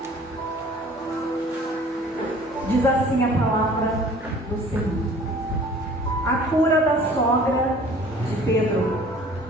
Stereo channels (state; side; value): normal; both; correlation 0.50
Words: Diz assim a palavra do Senhor. A cura da sogra de Pedro.